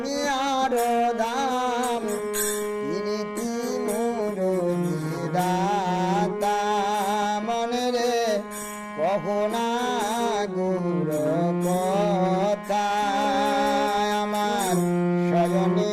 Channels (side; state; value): both; identical; correlation 1.00